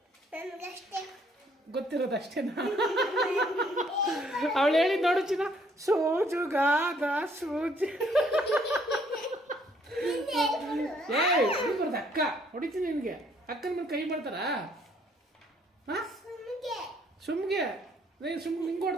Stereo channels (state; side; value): normal; both; correlation 0.65